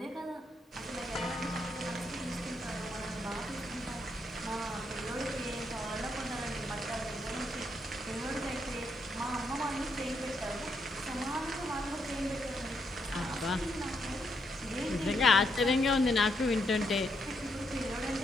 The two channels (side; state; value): both; normal; correlation 0.78